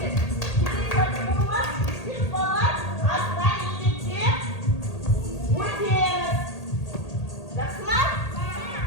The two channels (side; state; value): right; late; 1.8 ms